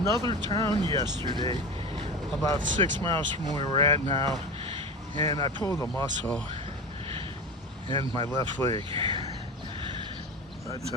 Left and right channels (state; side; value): normal; both; correlation 0.27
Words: town yesterday, about 6 miles from where we're at now, and I pulled a muscle in my left leg. But